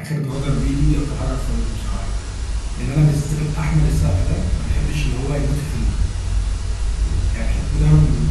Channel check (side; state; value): both; identical; correlation 1.00